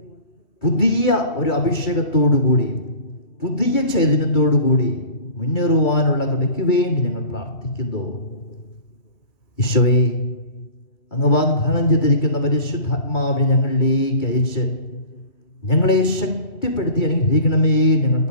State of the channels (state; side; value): late; right; 2.3 ms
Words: പുതിയ ഒരു അഭിഷേകത്തോടുകൂടി പുതിയ ചൈതന്യത്തോടുകൂടി മുന്നേറുവാനുള്ള കൃപയ്ക്ക് വേണ്ടി ഞങ്ങൾ പ്രാർത്ഥിക്കുന്നു. ഈശോയെ, അങ്ങ് വാഗ്ദാനം ചെയ്തിരിക്കുന്ന പരിശുദ്ധാത്മാവിനെ ഞങ്ങളിലേക്ക് അയച്ച് ഞങ്ങളെ ശക്തിപ്പെടുത്തി അനുഗ്രഹിക്കണമേ ഞങ്ങൾ